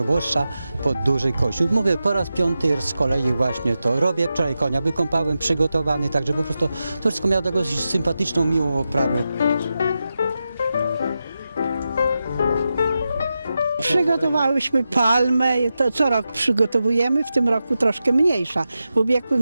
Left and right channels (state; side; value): inverted; both; correlation -0.90